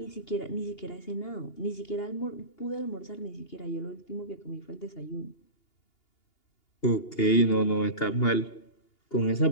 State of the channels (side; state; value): right; late; 2.8 ms